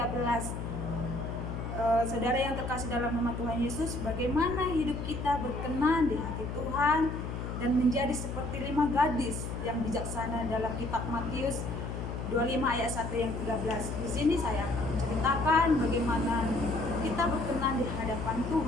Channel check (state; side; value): noise; left; hum, 5 dB below the sound